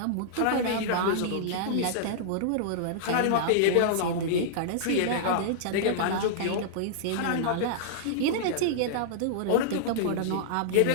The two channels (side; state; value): both; different; correlation -0.02